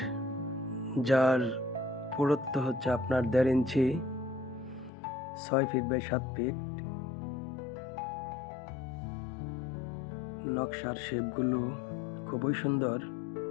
যার পুরুত্ব হচ্ছে আপনার 1.5 ইঞ্চি, 6 ফিট বাই 7 ফিট। নকশার শেপগুলো খুবই সুন্দর,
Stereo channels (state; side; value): drops out; right; at 4.9 s